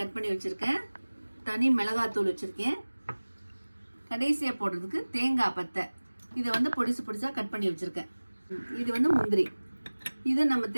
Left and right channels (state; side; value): inverted; both; correlation -1.00